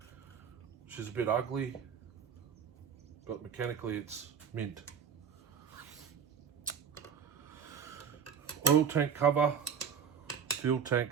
She's a bit ugly, but mechanically it's mint. Oil tank cover. Fuel tank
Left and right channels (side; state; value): left; quieter; 7.3 dB